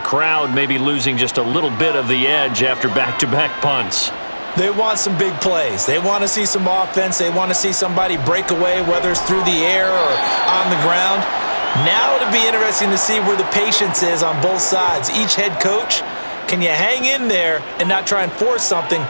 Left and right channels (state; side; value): inverted; both; correlation -1.00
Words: crowd may be losing just a little bit of the edge after back-to-back punts. They want some big plays. They want to see some offense. They want to see somebody break away, whether it's through the air or on the ground. Now it'll be interesting to see where the patience is on both sides. Each head coach, can you hang in there and not try and force something